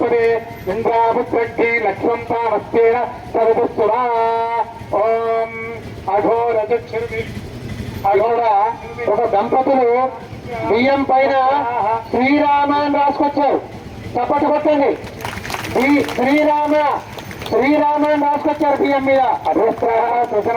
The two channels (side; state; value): both; identical; correlation 1.00